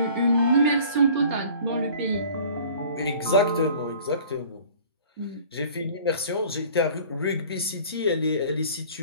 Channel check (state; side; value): inverted; both; correlation -0.48